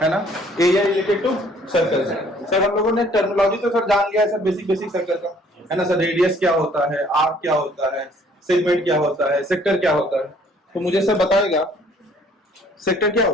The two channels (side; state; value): both; normal; correlation 0.59